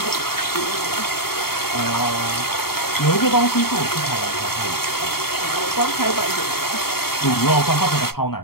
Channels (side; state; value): right; late; 0.94 ms